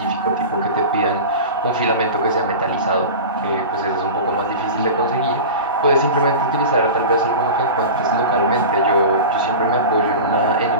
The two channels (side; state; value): both; inverted; correlation -0.30